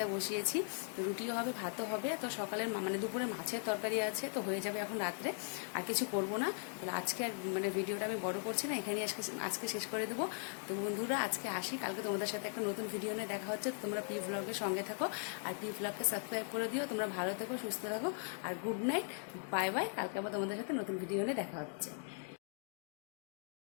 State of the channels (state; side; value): silent; right; 52 dB below the other